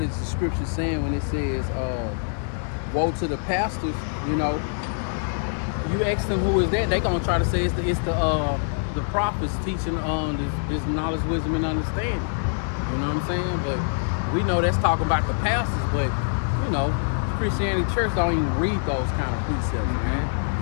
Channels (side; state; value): right; silent; digital silence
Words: is the scripture saying when it says, "Woe to the pastors"? You know, you ask them who is that, they gonna try to say it's the prophets teaching this knowledge, wisdom, and understanding. You know what I'm saying? But we know that's talking about the pastors, but you know, Christianity Church don't even read those kind of precepts, man.